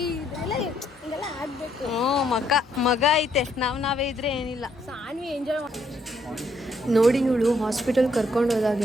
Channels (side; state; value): both; normal; correlation 0.71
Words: ಆಗ್ಬೇಕು. ಮಗ ಐತೆ, ನಾವೇ ಇದ್ರೆ ಏನಿಲ್ಲ. ಸಾನ್ವಿ ಎಂಜಾಯ್ ನೋಡಿ ಇವಳು ಹಾಸ್ಪಿಟಲ್ ಕರ್ಕೊಂಡು